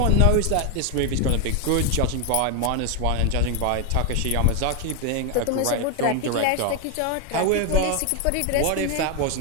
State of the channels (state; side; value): different; both; correlation 0.01